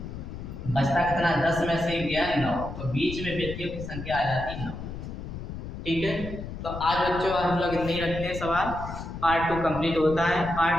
बचता कितना, 10 में से गया 9, तो बीच में व्यक्तियों की संख्या आ जाती 9। ठीक है। तो आज बच्चों हम लोग इतने ही रखते हैं सवाल। पार्ट 2 कंप्लीट होता है,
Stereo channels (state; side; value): noise; left; rumble, 9 dB below the sound